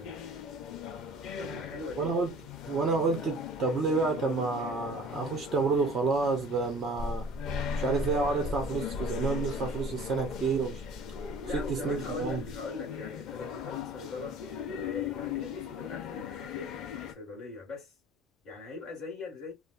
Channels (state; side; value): normal; both; correlation 0.47